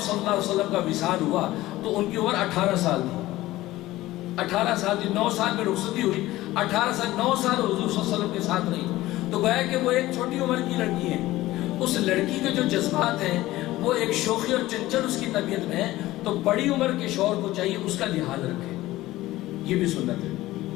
اللہ علیہ وسلم کا وصال ہوا تو ان کی عمر 18 سال تھی. 18 سال تھی، 9 سال میں رخصتی ہوئی، 18 سال 9 سال حضور صلی اللہ علیہ وسلم کے ساتھ رہی. تو گویا کہ وہ ایک چھوٹی عمر کی لڑکی ہے. اس لڑکی کے جو جذبات ہیں وہ ایک شوخی اور چنچل اس کی طبیعت میں ہے، تو بڑی عمر کے شوہر کو چاہیے اس کا لحاظ رکھے. یہ بھی سنت ہے.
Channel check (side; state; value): right; quieter; 16.9 dB